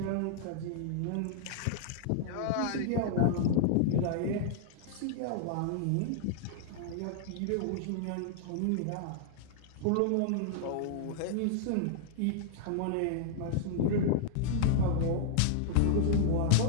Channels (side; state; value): both; different; correlation -0.01